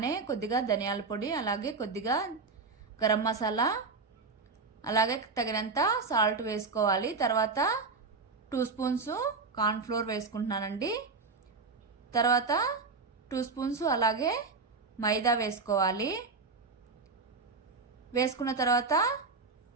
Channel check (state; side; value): quieter; left; 4.3 dB